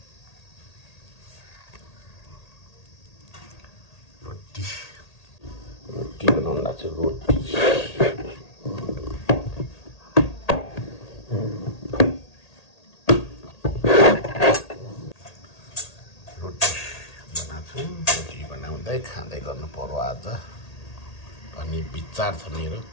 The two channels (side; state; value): right; late; 1.8 ms